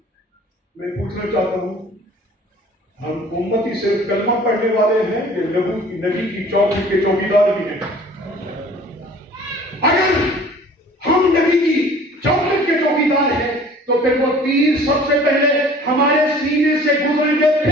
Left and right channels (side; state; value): both; normal; correlation 0.49